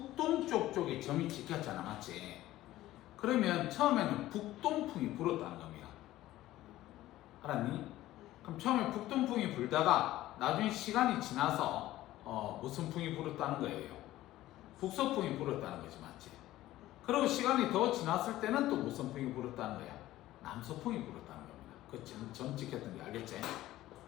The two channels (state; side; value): quieter; right; 15.4 dB